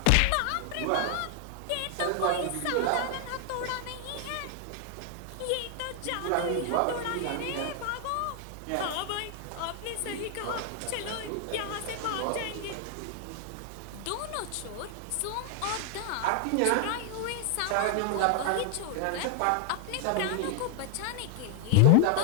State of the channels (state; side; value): different; both; correlation 0.00